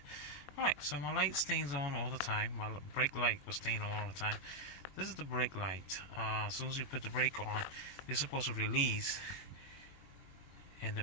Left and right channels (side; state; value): right; late; 21 ms